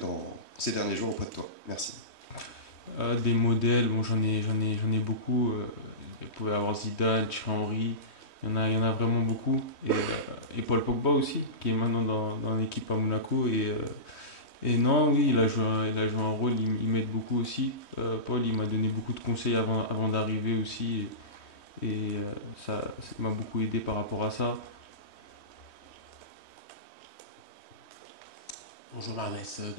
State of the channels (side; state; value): right; late; 3.2 ms